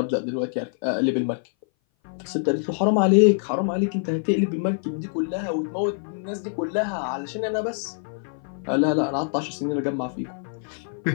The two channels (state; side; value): silent; right; 58 dB below the other